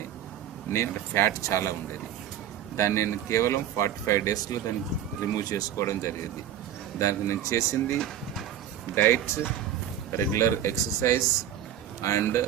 నేను ఫ్యాట్ చాలా ఉండేది. దాన్ని నేను కేవలం 45 డేస్లో దాన్ని రిమూవ్ చేసుకోవడం జరిగింది. దానికి నేను చేసింది diet, regular exercise and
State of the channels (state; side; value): quieter; left; 10.2 dB